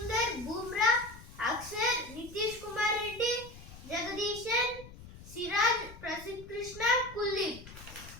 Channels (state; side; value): noise; left; rumble, 17 dB below the sound